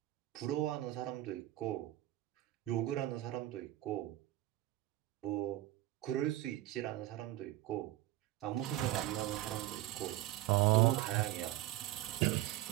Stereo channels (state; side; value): quieter; left; 15.6 dB